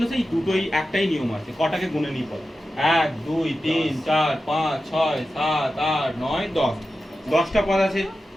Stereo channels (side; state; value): both; normal; correlation 0.93